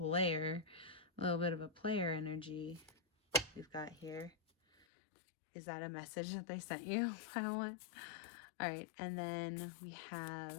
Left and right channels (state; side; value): drops out; right; at 4.9 s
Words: A little bit of a player energy we've got here. Is that a message that they sent you? Pile 1. All right, and then we